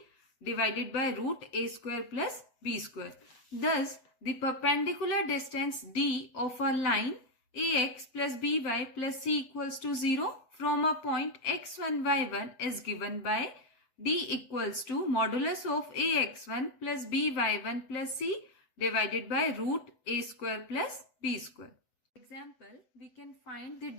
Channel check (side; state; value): right; late; 8.0 ms